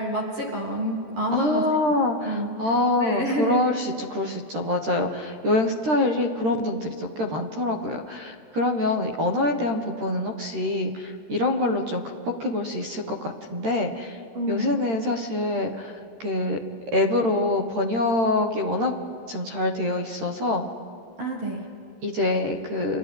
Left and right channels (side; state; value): left; late; 13 ms